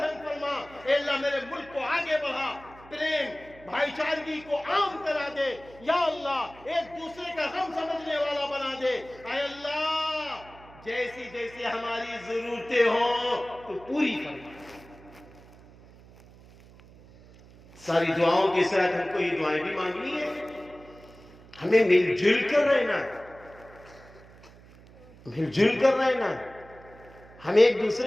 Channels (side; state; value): right; noise; hum, 22 dB below the sound